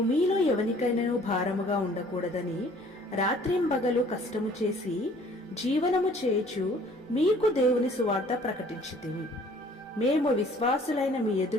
మీలో ఎవనికైనాను భారముగా ఉండకూడదని రాత్రింబగలు కష్టము చేసి జీవనము చేయుచు మీకు దేవుని సువార్త ప్రకటించితిమి. మేము విశ్వాసులైన మీ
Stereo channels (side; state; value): both; normal; correlation 0.55